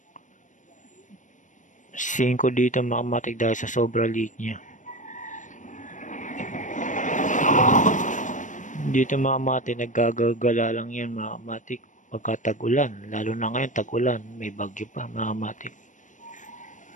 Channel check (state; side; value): late; right; 0.37 ms